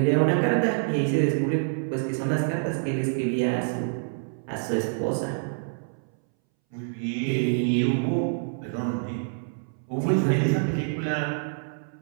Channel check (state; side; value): silent; left; 61 dB below the other